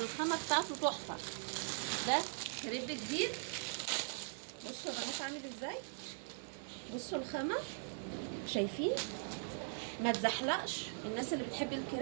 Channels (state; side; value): silent; left; digital silence